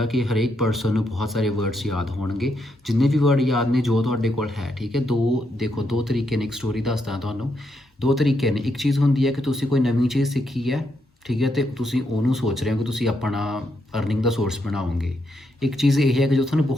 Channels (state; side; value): normal; both; correlation 0.79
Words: ਕਿ ਹਰੇਕ ਪਰਸਨ ਨੂੰ ਬਹੁਤ ਸਾਰੇ ਵਰਡਸ ਯਾਦ ਹੋਣਗੇ। ਜਿੰਨੇ ਵੀ ਵਰਡ ਯਾਦ ਨੇ ਜੋ ਤੁਹਾਡੇ ਕੋਲ ਹੈ। ਠੀਕ ਹੈ, ਦੋ ਤਰੀਕੇ ਨੇ, ਇੱਕ ਸਟੋਰੀ ਦੱਸਦਾ ਤੁਹਾਨੂੰ। ਦੋ ਤਰੀਕੇ ਨੇ, ਇੱਕ ਚੀਜ਼ ਹੁੰਦੀ ਹੈ ਕਿ ਤੁਸੀਂ ਕੋਈ ਨਵੀਂ ਚੀਜ਼ ਸਿੱਖੀ ਹੈ, ਠੀਕ ਹੈ, ਅਤੇ ਤੁਸੀਂ ਉਹਨੂੰ ਸੋਚ ਰਹੇ ਹੋ ਕਿ ਤੁਸੀਂ ਆਪਣਾ ਅਰਨਿੰਗ ਦਾ ਸੋਰਸ ਬਣਾਓਗੇ। ਇੱਕ ਚੀਜ਼ ਇਹ ਹੈ ਕਿ ਜੋ ਤੁਹਾਨੂੰ